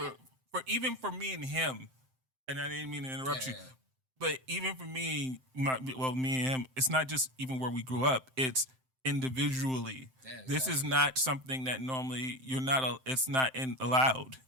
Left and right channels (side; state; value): left; late; 7.7 ms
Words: even for me and him, and I didn't mean to interrupt you, but even for me, me and him, it's not just even where we grew up. It's individually. Yeah, This exactly. is not something that normally it's not allowed.